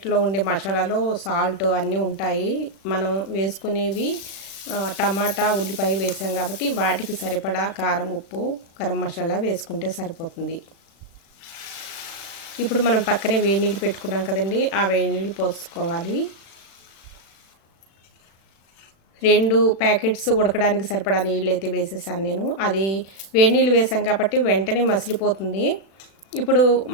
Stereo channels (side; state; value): right; late; 36 ms